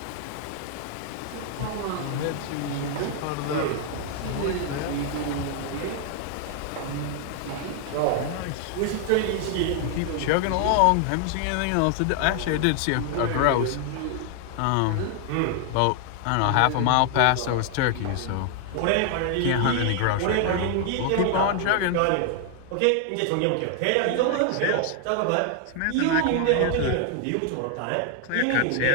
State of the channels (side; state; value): both; different; correlation 0.00